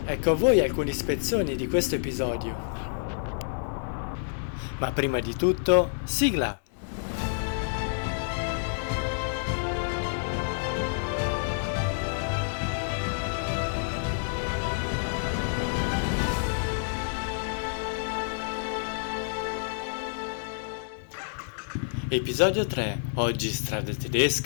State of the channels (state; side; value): silent; right; digital silence